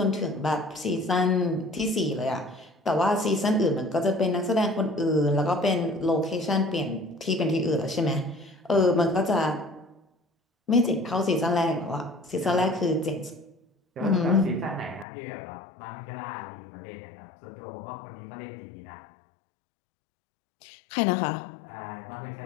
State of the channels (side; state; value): right; drops out; at 15.1 s